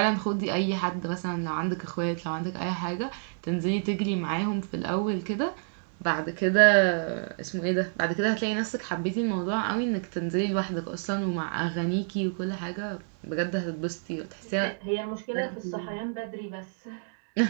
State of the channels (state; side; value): silent; left; digital silence